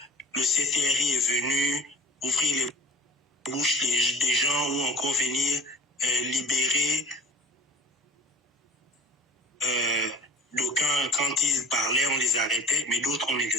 CTRI est venu ouvrir les bouches des gens ou encore venir libérer d'aucuns quand ils parlaient, on les arrêtait, mais d'autres on ne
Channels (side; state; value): both; normal; correlation 0.43